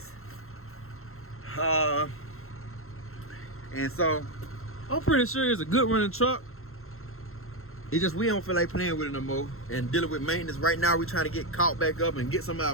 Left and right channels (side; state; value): right; late; 0.62 ms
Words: And so I'm pretty sure it's a good running truck. It's just we don't feel like playing with it no more and dealing with maintenance. Right now we're trying to get caught back up and get some of our